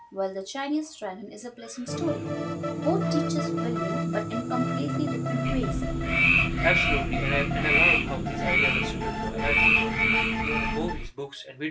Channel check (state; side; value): identical; both; correlation 1.00